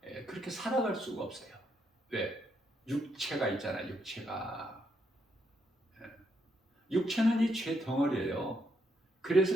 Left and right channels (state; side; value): normal; both; correlation 0.77